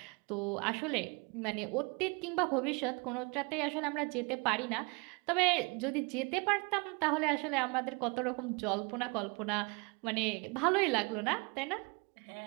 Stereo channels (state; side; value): quieter; left; 29.9 dB